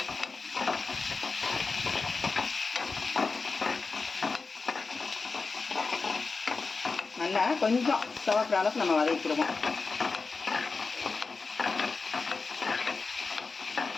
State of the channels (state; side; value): quieter; right; 4.3 dB